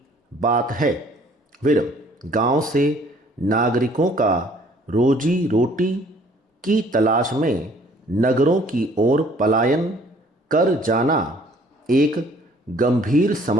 बात है। विरम गांव से नागरिकों का रोजी रोटी की तलाश में नगरों की ओर पलायन कर जाना एक गंभीर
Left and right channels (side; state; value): both; normal; correlation 0.58